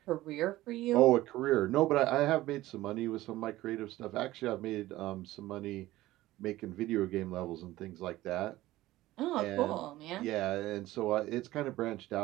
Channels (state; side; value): quieter; left; 16.6 dB